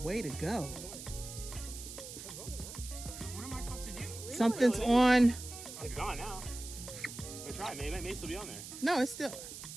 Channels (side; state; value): right; noise; hiss, 11 dB below the sound